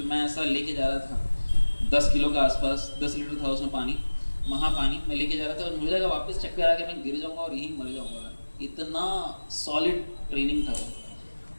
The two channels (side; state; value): both; inverted; correlation -1.00